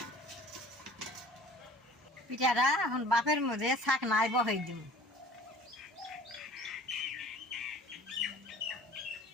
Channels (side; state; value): both; normal; correlation 0.48